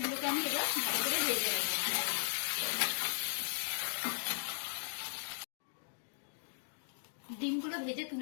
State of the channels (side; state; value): right; silent; digital silence